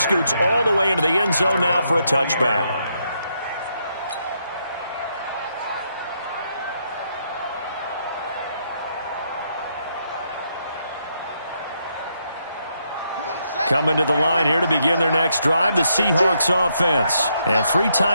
all the way into the end zone now for a touchback. Coming to the line here to begin their next drive, the Seahawks offense. And 3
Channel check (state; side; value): inverted; both; correlation -0.77